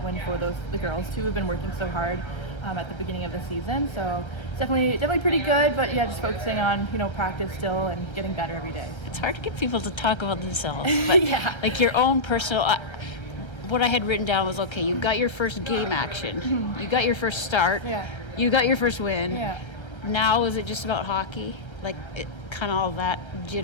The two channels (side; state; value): right; late; 1.3 ms